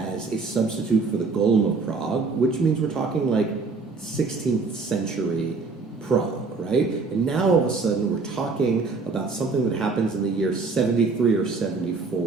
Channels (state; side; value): quieter; left; 4.2 dB